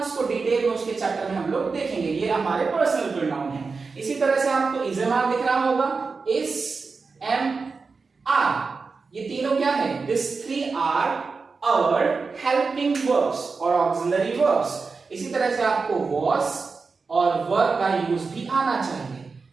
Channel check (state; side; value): quieter; left; 4.5 dB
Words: को डिटेल में उसके चैप्टर में हम लोग देखेंगे। ये हमारे पर्सनल प्रोनाउन है। इसी तरह से आपको इजमार दिख रहा होगा, इस, एम, आर, ये क्या है? This three are our helping verbs और ऑक्सिलरी वर्ब्स। इसी तरह से आपको वॉज और वर का यूज भी आना चाहिए।